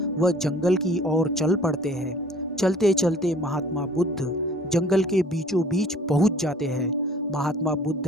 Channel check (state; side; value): normal; both; correlation 0.52